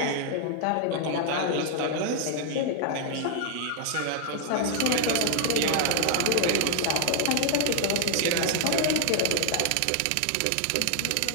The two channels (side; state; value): both; different; correlation 0.00